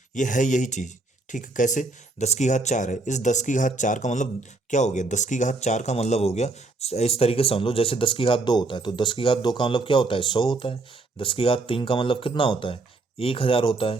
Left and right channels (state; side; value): quieter; left; 3.2 dB